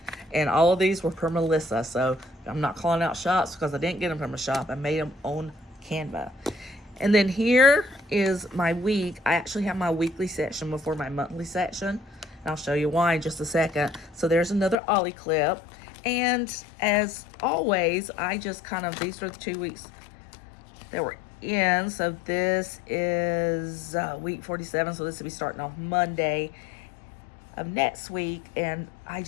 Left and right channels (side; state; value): right; drops out; at 14.8 s